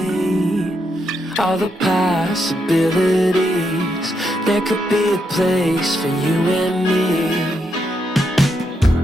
all the possibilities. There could be a place for you and me.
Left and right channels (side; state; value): both; normal; correlation 0.80